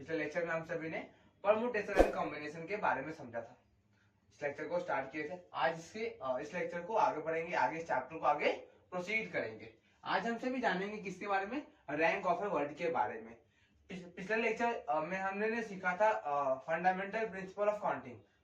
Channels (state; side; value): identical; both; correlation 1.00